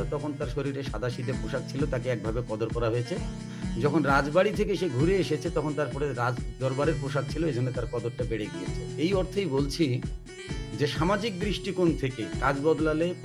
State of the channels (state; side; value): identical; both; correlation 1.00